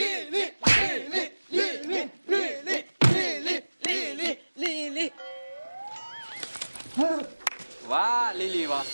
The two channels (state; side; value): inverted; both; correlation -1.00